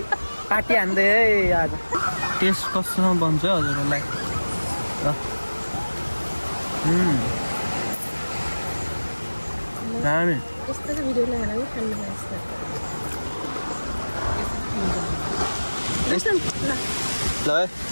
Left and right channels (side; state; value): both; inverted; correlation -1.00